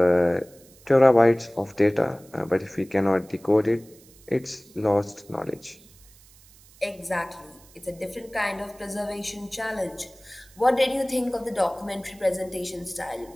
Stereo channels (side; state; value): right; noise; hiss, 26 dB below the sound